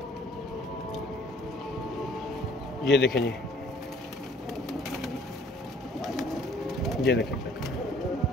ये देखें जी, ये देखें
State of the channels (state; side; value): normal; both; correlation 0.57